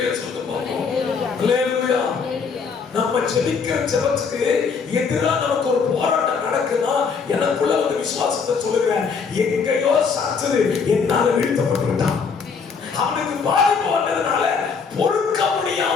சொல்லுங்க பாப்போம். அல்லேலூயா. நம்ம ஜெபிக்கிற ஜெபத்துக்கு எதிரா நமக்கு ஒரு போராட்டம் நடக்குன்னா எனக்குள்ள ஒரு விசுவாசத்தை சொல்லுகிறேன், எங்கேயோ சத்துரு என்னால வீழ்த்தப்பட்டு விட்டான். அவனுக்கு பாதிப்பு வந்ததுனால பொறுக்க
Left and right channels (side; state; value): right; quieter; 5.6 dB